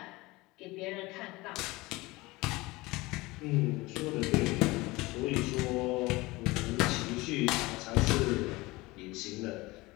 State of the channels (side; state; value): right; quieter; 21.6 dB